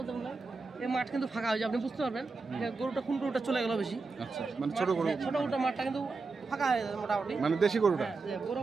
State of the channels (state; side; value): quieter; left; 4.0 dB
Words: বললাম এই মাঠ কিন্তু ফাঁকা হয়ে যাবে আপনি বুঝতে পারবেন যে গরুটা কোন গরুটা চলে গেল বেশি। আচ্ছা মানে ছোট গরু ছোট গরুটা মাঠটা কিন্তু ফাঁকা হয়ে যাবে মোটামুটি মানে দেশি গরুটা